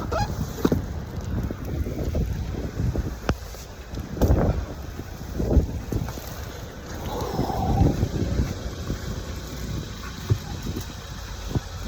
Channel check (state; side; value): identical; both; correlation 1.00